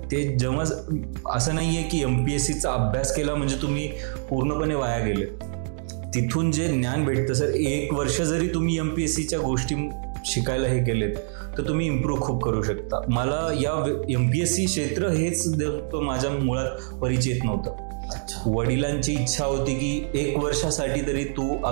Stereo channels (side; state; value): left; silent; digital silence